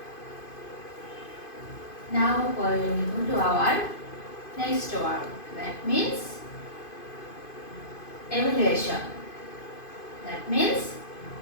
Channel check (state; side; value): late; right; 2.5 ms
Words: Now we will come to our next word. That means evaluation. That means